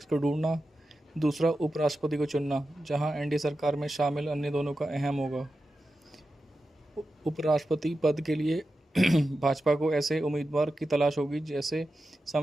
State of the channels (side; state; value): both; normal; correlation 0.91